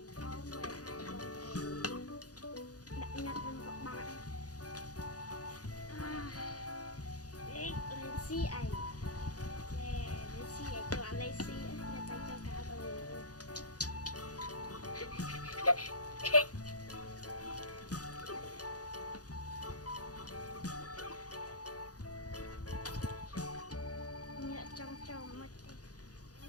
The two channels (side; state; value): right; late; 0.68 ms